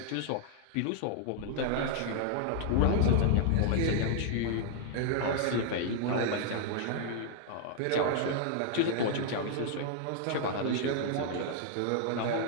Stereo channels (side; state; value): both; different; correlation -0.01